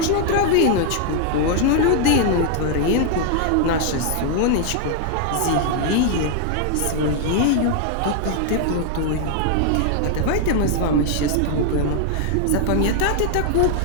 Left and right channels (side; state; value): both; different; correlation 0.00